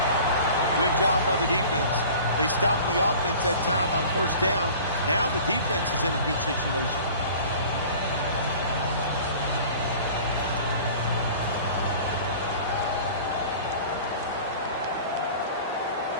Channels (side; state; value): both; inverted; correlation -0.43